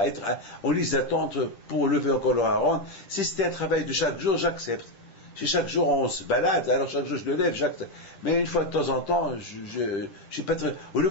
être en liste d'attente pour lever encore le haron. Si c'était un travail de chaque jour, j'accepte. Si chaque jour on se balade, alors chaque jour je le lève, j'accepte. Mais une fois de temps en temps, je suis pas très... Au lieu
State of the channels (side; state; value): right; late; 10 ms